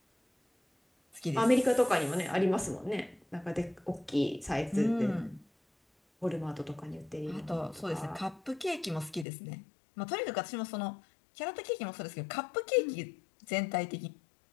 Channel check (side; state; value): right; drops out; at 9.2 s